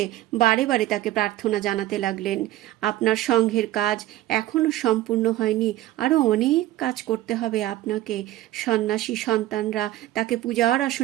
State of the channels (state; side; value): quieter; left; 14.9 dB